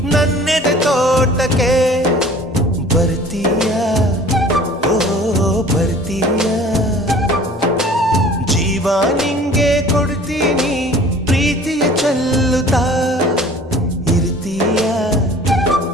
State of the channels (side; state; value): both; normal; correlation 0.47